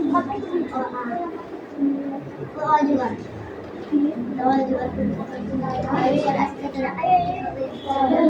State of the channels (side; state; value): both; identical; correlation 1.00